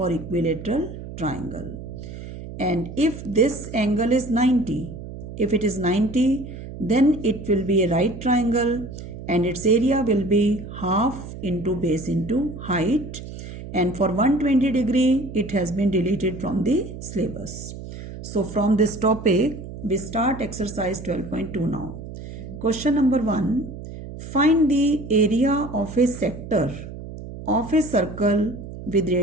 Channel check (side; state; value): right; noise; hum, 11 dB below the sound